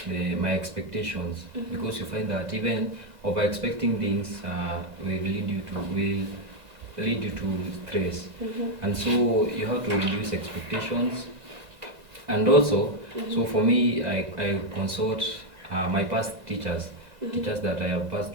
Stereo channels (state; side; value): late; left; 2.0 ms